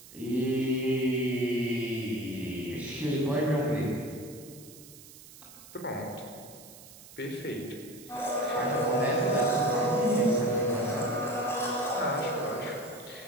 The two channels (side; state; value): right; noise; hiss, 19 dB below the sound